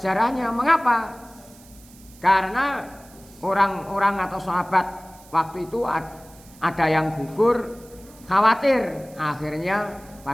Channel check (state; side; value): noise; right; hiss, 24 dB below the sound